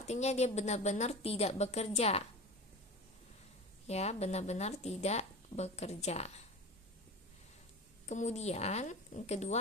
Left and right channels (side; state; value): both; normal; correlation 0.31